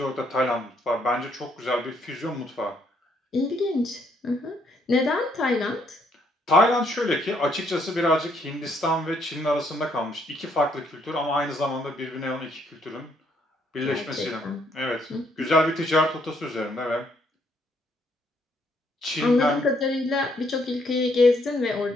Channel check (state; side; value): normal; both; correlation 0.70